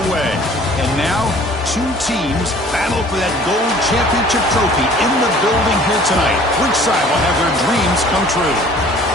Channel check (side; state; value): both; normal; correlation 0.51